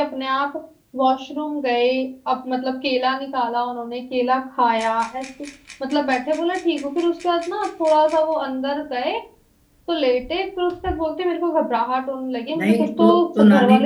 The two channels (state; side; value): identical; both; correlation 1.00